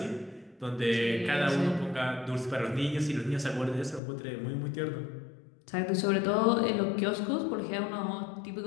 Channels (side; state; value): right; drops out; at 4.0 s